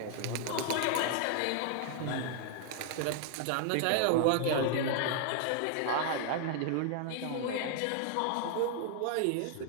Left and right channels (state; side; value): different; both; correlation 0.00